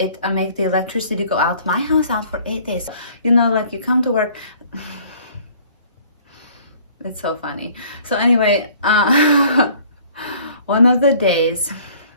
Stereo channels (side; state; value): both; inverted; correlation -0.54